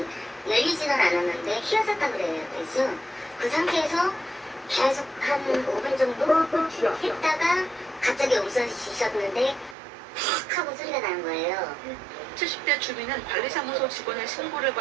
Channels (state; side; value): drops out; left; at 9.8 s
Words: 열리지는 않았는데 휘어졌다 그래요. 그래서 그 상태에서 계속 한 5분 정도 했다가 갑자기 없어지셨는데 팍 하고 소리가 나는 거예요. 70대 주민은 관리사무소 직원의 신고를